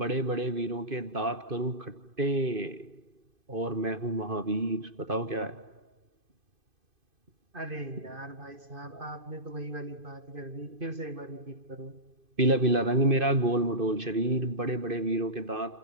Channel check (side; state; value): left; late; 2.5 ms